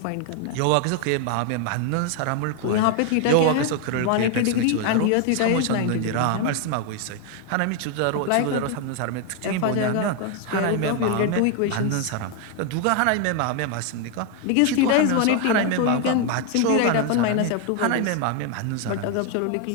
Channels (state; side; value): different; both; correlation 0.01